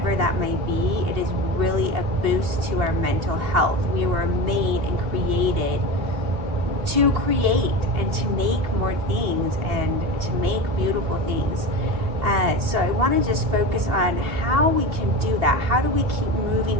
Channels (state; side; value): late; left; 2.8 ms